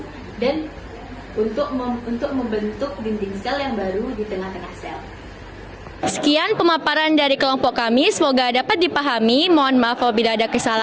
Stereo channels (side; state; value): both; identical; correlation 1.00